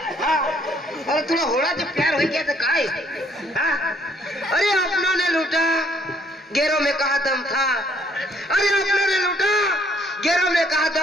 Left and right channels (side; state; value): both; normal; correlation 0.66